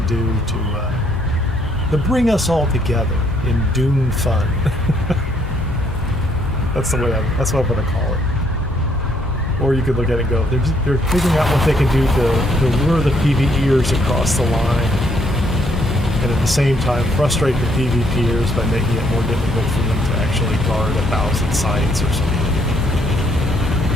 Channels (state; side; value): normal; both; correlation 0.69